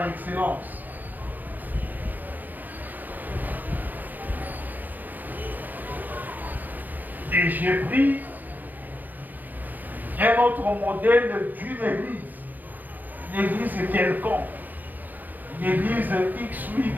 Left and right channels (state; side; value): late; left; 0.084 ms